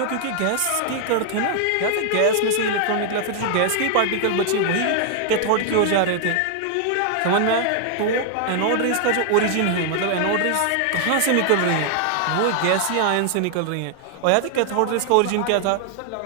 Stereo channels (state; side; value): different; both; correlation 0.00